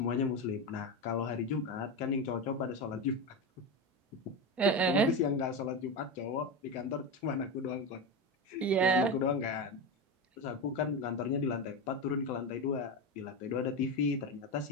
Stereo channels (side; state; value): both; normal; correlation 0.18